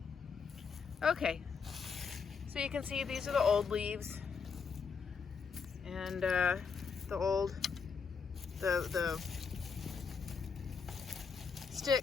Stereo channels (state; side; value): quieter; right; 5.7 dB